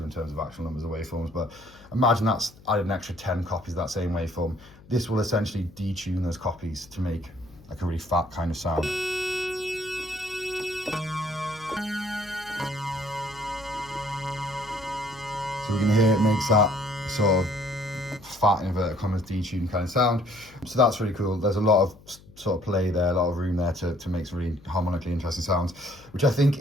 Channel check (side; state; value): left; noise; hum, 23 dB below the sound